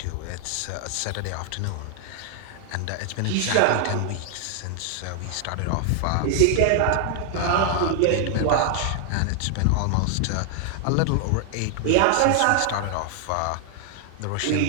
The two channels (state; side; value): different; both; correlation 0.00